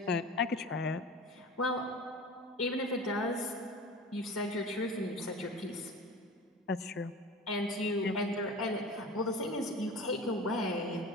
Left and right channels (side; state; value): both; normal; correlation 0.35